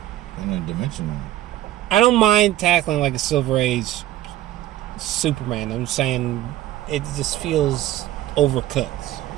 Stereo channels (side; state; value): left; quieter; 14.1 dB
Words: interdimensional. I don't mind tackling a Silver Age Superman. I'm just saying it just feels overcooked.